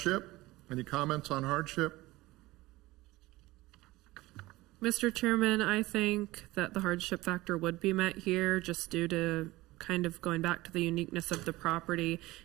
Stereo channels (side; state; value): left; quieter; 19.1 dB